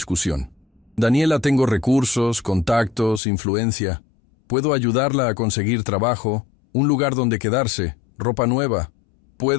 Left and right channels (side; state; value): right; drops out; at 3.2 s